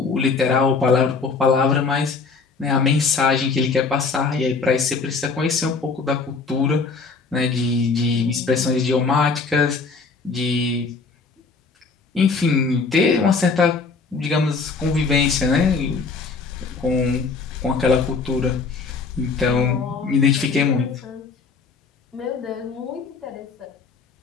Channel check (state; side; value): quieter; right; 4.5 dB